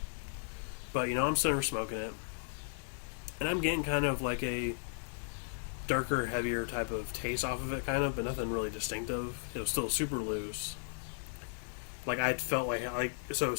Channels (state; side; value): silent; right; digital silence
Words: But, I'm sitting there smoking it. And I'm getting kind of like a darker, heavier type of taste off of it, kind of, but nothing really distinctive. It was still super loose. Like, I felt like so